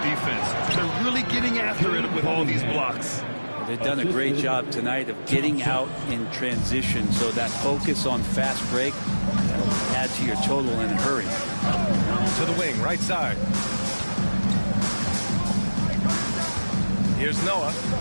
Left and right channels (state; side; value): inverted; both; correlation -1.00